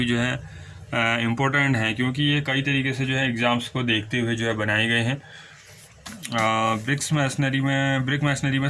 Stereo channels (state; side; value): identical; both; correlation 1.00